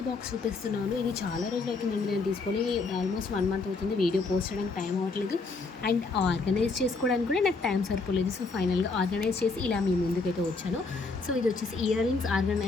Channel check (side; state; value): right; quieter; 4.0 dB